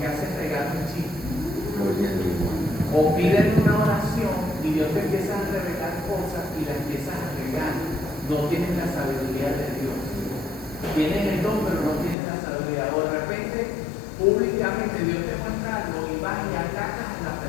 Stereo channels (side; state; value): right; drops out; at 12.2 s